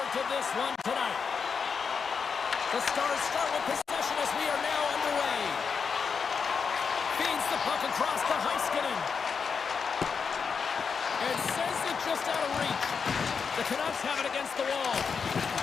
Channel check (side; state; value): right; quieter; 5.8 dB